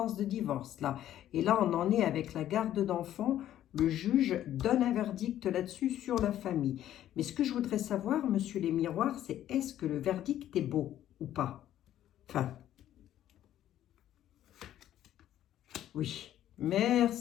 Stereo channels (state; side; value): quieter; right; 12.0 dB